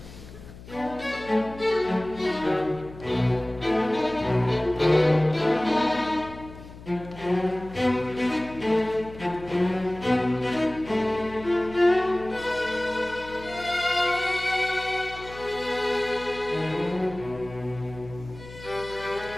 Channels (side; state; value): left; noise; hum, 17 dB below the sound